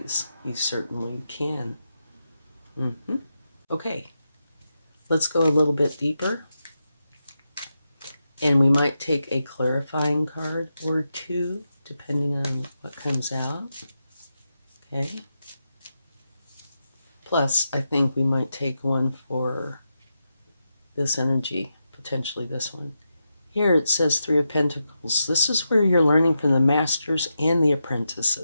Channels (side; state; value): both; inverted; correlation -0.87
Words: you certainly can. Okay, let's go a little bit deeper. And we might take a clarifying card or two, depending on what comes out. Okay. Plus, I think we might take one for this energy, potentially this one. Here it says Three of Pentacles. This is where you're learning from the masters and the